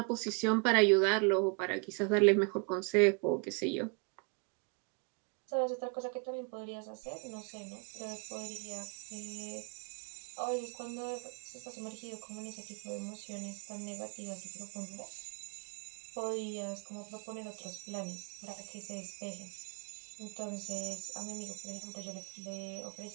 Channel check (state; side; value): quieter; left; 35.6 dB